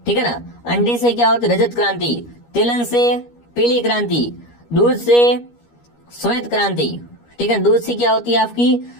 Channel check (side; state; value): right; late; 13 ms